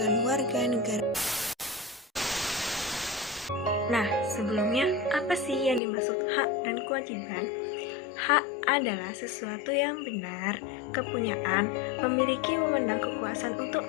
Warga Negara. Nah, sebelumnya apa sih yang dimaksud hak dan kewajiban? Hak adalah sesuatu yang benar, kepunyaan, memiliki wewenang kekuasaan untuk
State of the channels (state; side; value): drops out; right; at 5.8 s